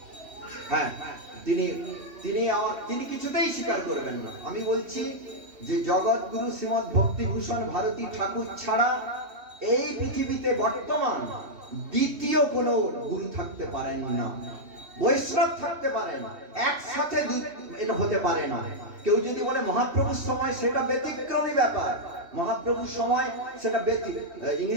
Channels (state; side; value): late; left; 3.1 ms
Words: হ্যাঁ, তিনি কিছুতেই স্বীকার করবেন না। আমি বলছি যে জগৎ গুরু শ্রীমৎ ভক্তিভূষণ ভারতী ঠাকুর ছাড়া এই পৃথিবীতে বর্তমান দ্বিতীয় কোনো গুরু থাকতে পারেন না, বৈষ্ণব থাকতে পারে না, একসাথে এটা হতে পারে না। কেউ যদি বলে মহাপ্রভুর সময়, সেটা ব্যতিক্রমী ব্যাপার, মহাপ্রভুর সময় সেটা